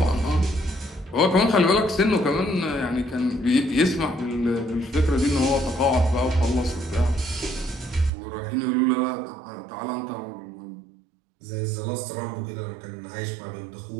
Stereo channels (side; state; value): left; drops out; at 8.1 s